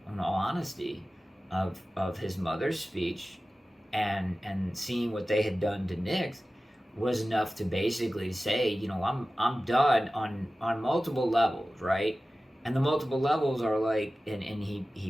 in all honesty, of his mother's speech and seeing what they had done to Nix was enough to basically say, I'm done on multiple levels, right? And the multiple levels are and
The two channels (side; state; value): both; normal; correlation 0.96